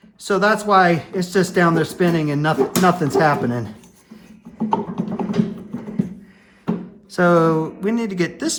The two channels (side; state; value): both; identical; correlation 1.00